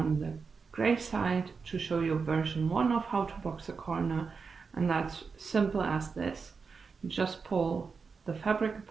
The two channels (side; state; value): left; quieter; 5.1 dB